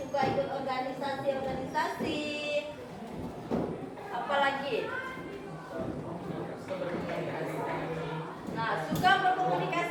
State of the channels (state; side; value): identical; both; correlation 1.00